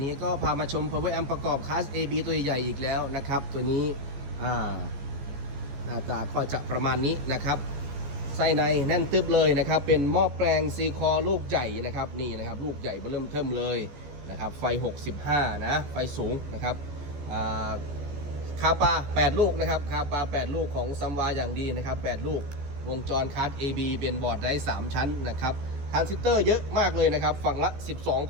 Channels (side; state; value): left; late; 14 ms